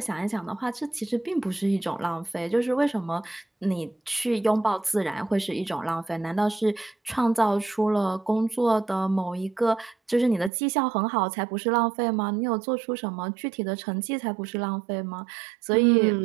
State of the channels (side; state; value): left; drops out; at 10.5 s